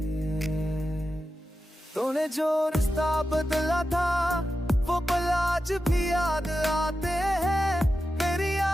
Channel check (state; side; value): normal; both; correlation 0.91